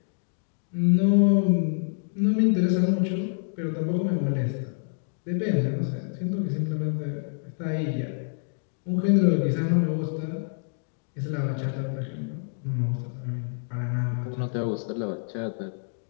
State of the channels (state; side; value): silent; right; digital silence